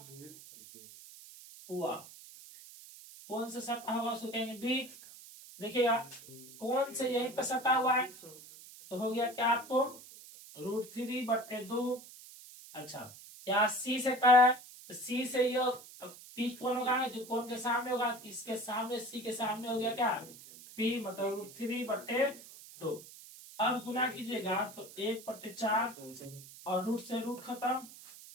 हुआ, कौन से सटा हुआ उसको कहेंगे बी। देखिएगा कौन से यहीं पे सटा हुआ है तो हो गया क्या आपको √3/2। अच्छा यहाँ सी से क्या है, तो सी से ये पी कौन होगा जो कौन के सामने होगा, इसके सामने सी के सामने हो गया क्या पी, मतलब √3/2। अब गुना कीजिएगा तो 1/4 और रूट से रूट खत्म,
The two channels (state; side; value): noise; right; hiss, 17 dB below the sound